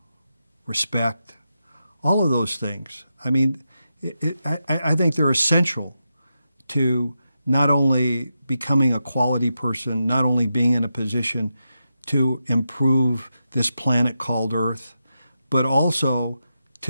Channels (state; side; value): inverted; both; correlation -0.88